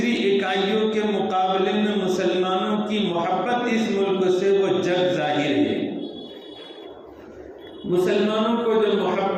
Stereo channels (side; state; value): both; identical; correlation 1.00